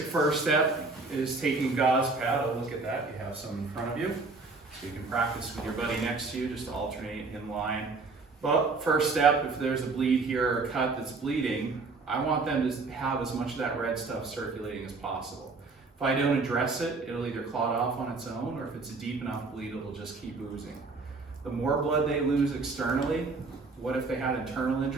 first step is taking gauze pad. Oh, look at that, you have some in front of you. So you can practice with your buddy next to you, just alternate in line. But first step, if there's a bleed here or a cut that's bleeding, I want them to have as much of that red stuff circulating as possible. If I don't address it, it'll either clot off on its own, or if it's a deep enough bleed, it'll just keep oozing. The more blood they lose externally, what if they had internal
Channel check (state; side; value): quieter; left; 3.9 dB